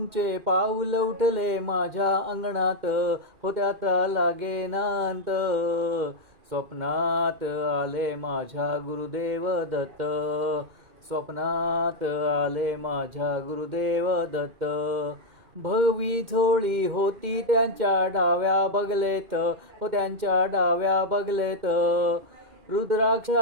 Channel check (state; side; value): late; left; 2.1 ms